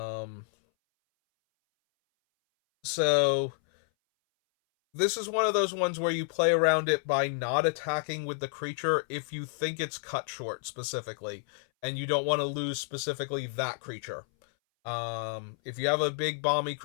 So this is one of those ones where you play around it by not attacking with the creature if you think it's cut short specifically, and you don't want to lose specifically that creature. If you have a big bomby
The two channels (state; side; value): silent; right; 58 dB below the other